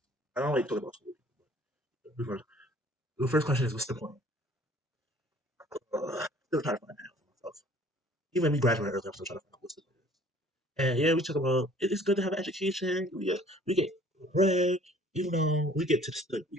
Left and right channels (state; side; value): normal; both; correlation 0.53